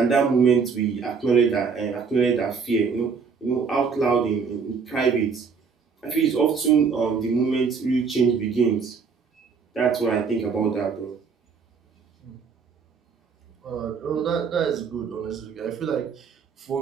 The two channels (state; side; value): quieter; left; 5.6 dB